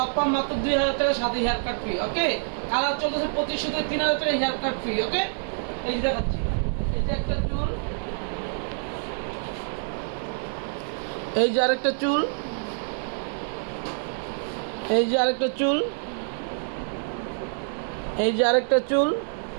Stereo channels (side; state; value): left; silent; 61 dB below the other